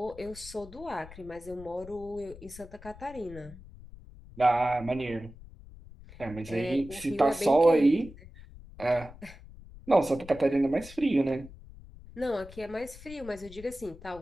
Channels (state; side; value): noise; left; rumble, 18 dB below the sound